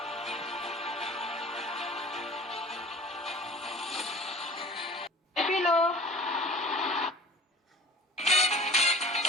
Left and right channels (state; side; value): normal; both; correlation 0.44